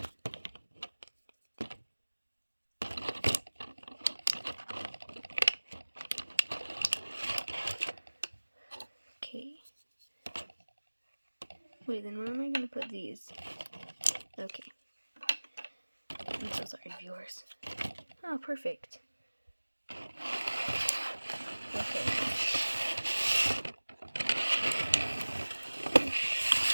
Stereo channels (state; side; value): inverted; both; correlation -1.00